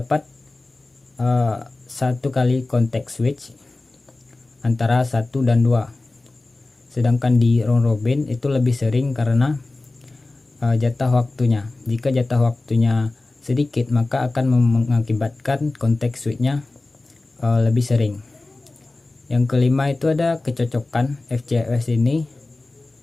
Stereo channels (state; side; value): quieter; right; 3.1 dB